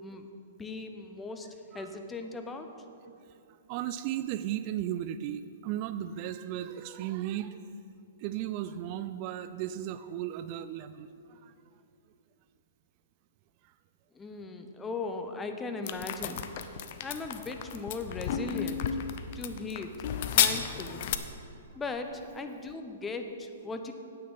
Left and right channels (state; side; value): normal; both; correlation -0.13